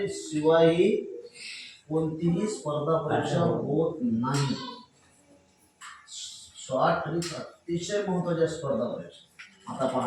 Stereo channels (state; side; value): identical; both; correlation 1.00